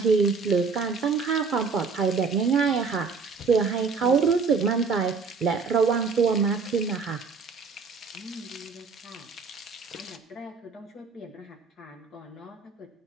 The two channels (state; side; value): quieter; left; 4.9 dB